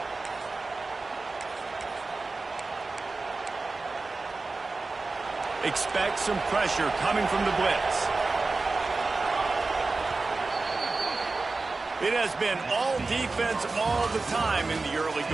Expect some pressure coming from the blitz. It has been all defense all the time in the early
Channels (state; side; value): quieter; left; 3.7 dB